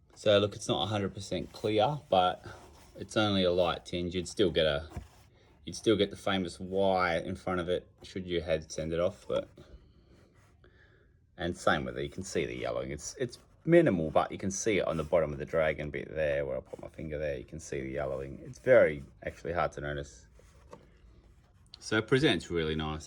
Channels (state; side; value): identical; both; correlation 1.00